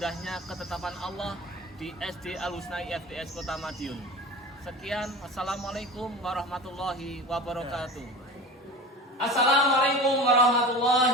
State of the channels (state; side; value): normal; both; correlation 0.34